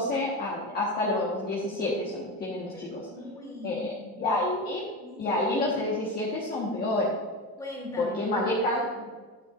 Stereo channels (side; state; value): both; normal; correlation 0.22